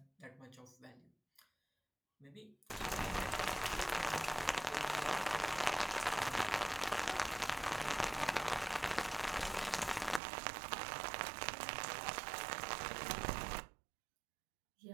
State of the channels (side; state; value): left; drops out; at 10.2 s